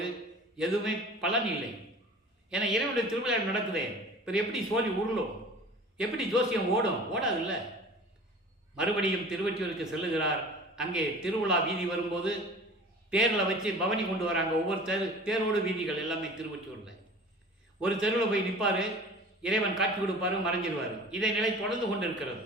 எதுவுமே பலன் இல்லை. ஏன்னா இறைவனுடைய திருவிழா நடக்குதே, இப்போ எப்படி சோழி உருளும், எப்படி ஜோசியம் ஓடாது இல்லை. மறுபடியும் திருவொற்றியூருக்கு செல்லுகிறார். அங்கே திருவிழா வீதி வரும்போது தேரில் வச்சு பவனி கொண்டு வராங்க. ஒவ்வொரு தேரோடு வீதிகள் எல்லாமே திருவொற்றியூரில். ஒரு தெருவில் போய் நிற்பார், இறைவன் காட்சி கொடுப்பாரு, மறைஞ்சிருவார். இதை நிலை தொடர்ந்து கொண்டு இருக்கிறது.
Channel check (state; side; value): normal; both; correlation 0.42